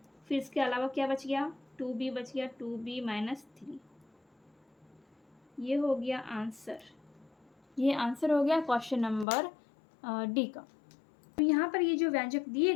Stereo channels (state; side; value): drops out; right; at 9.2 s